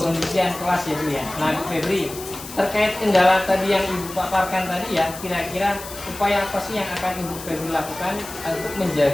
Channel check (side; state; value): left; noise; hiss, 13 dB below the sound